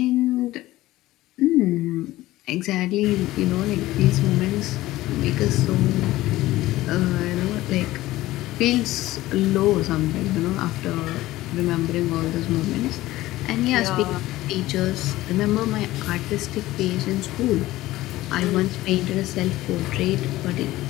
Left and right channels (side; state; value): right; quieter; 16.8 dB